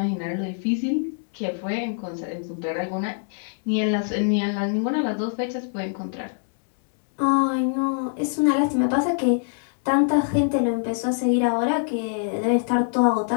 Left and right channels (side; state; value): right; silent; 62 dB below the other